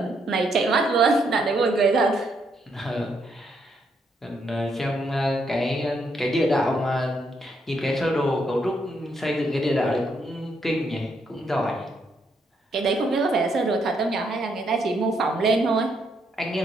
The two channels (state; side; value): normal; both; correlation 0.75